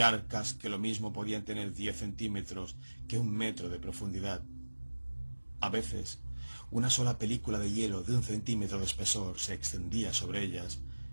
que lo mismo podían tener 10 centímetros que 1 metro de profundidad. A veces, una sola película de hielo de 1 centímetro de espesor se extendía sobre ellas,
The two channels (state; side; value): inverted; both; correlation -1.00